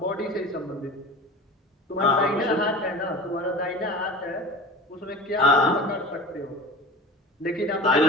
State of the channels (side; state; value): both; normal; correlation 0.35